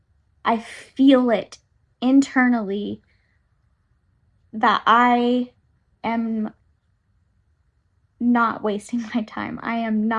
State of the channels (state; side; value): identical; both; correlation 1.00